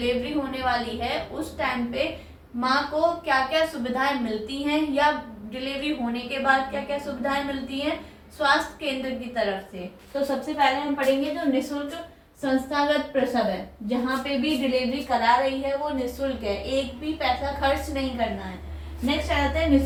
होने वाली है, उस टाइम पे माँ को क्या क्या सुविधाएं मिलती हैं या डिलीवरी होने के बाद क्या क्या सुविधाएं मिलती हैं स्वास्थ्य केंद्र की तरफ से। तो सबसे पहले हम पढ़ेंगे जो निःशुल्क संस्थागत प्रसव है, जहाँ पे भी डिलीवरी करा रही है वो निःशुल्क है, एक भी पैसा खर्च नहीं करना है। नेक्स्ट आता है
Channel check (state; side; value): identical; both; correlation 1.00